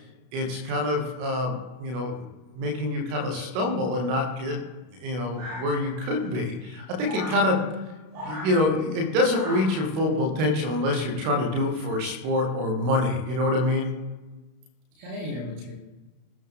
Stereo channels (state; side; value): late; left; 32 ms